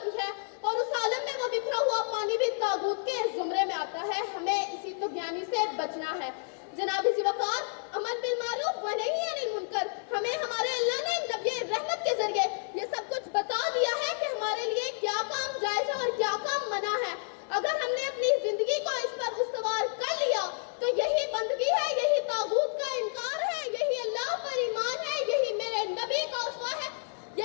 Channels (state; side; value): silent; right; digital silence